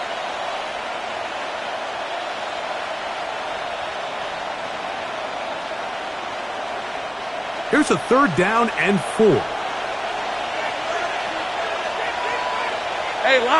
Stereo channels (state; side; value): identical; both; correlation 1.00